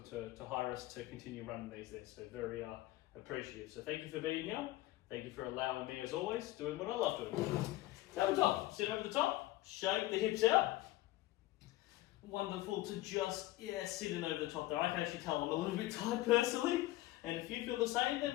to hire us to continue running these there. So very appreciative. So thank you for being here. Thank you for allowing me, as always, doing what I love doing. Tabletop, sit over the top, shake the hips out. Wonderful to just, sitting over the top there. I can actually tell I'm a little bit tired personally. And if you feel the same, then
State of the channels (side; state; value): right; quieter; 17.1 dB